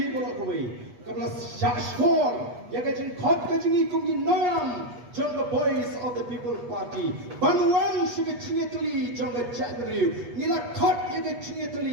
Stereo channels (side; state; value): left; late; 8.3 ms